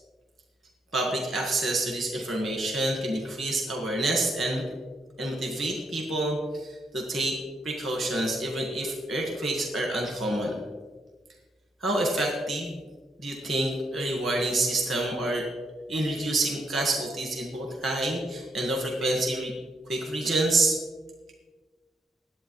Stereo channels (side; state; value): both; normal; correlation 0.76